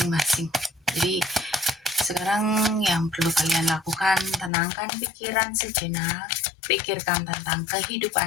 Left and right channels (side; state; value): right; drops out; at 4.5 s